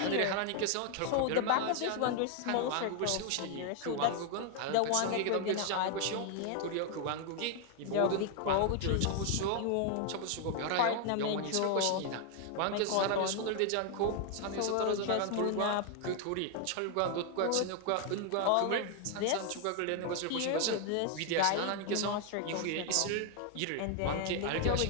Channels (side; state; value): both; different; correlation 0.00